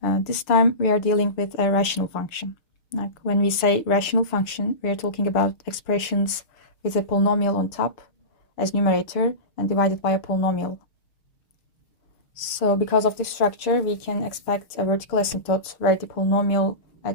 This time we are dealing with a rational function. Like when we say rational function, we are talking about expressions with a polynomial on top as numerator and divided by a polynomial. So because of this structure, we can expect a vertical asymptote where the polynomial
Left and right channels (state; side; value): late; right; 6.4 ms